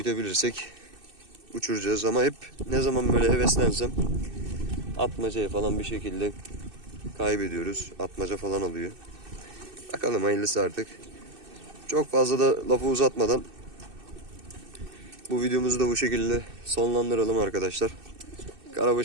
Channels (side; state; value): left; late; 2.6 ms